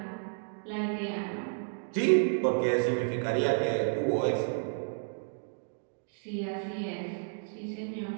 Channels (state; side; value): silent; left; digital silence